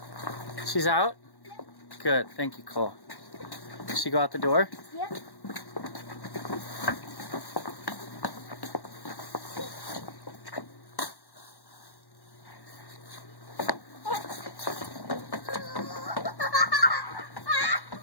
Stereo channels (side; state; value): right; late; 1.1 ms